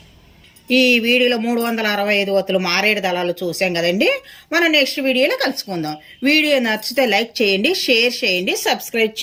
ఈ వీడియోలో 365 ఒత్తులు మారేడు దళాలు చూసాం కదండి. మనం నెక్స్ట్ వీడియోలో కలుసుకుందాం. వీడియో నచ్చితే లైక్ చేయండి, షేర్ చేయండి, సబ్స్క్రైబ్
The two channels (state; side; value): identical; both; correlation 1.00